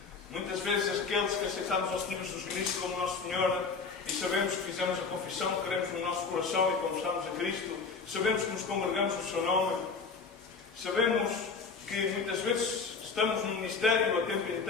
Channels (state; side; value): quieter; right; 4.9 dB